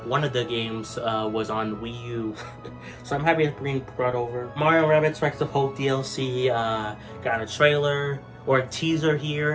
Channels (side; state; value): both; identical; correlation 1.00